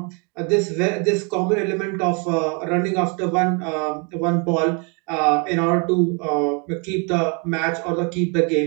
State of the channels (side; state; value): left; quieter; 34.6 dB